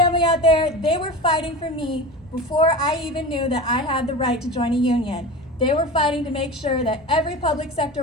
out there. They were fighting for me before I even knew that I had the right to join a union. They were fighting to make sure that every public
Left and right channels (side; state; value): both; normal; correlation 0.30